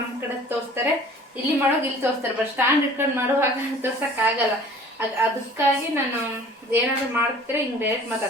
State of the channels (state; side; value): normal; both; correlation 0.48